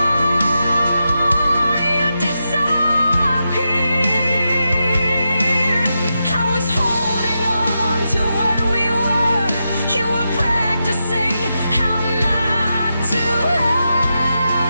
you disappeared. I was holding on to what we were. You were practicing how not to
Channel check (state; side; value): inverted; both; correlation -0.87